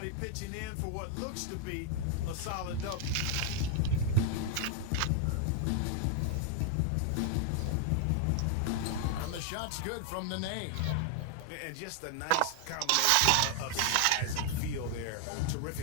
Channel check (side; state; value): both; different; correlation 0.00